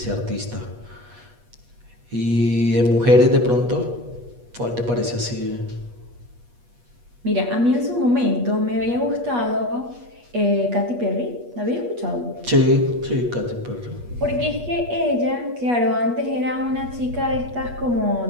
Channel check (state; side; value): late; left; 8.3 ms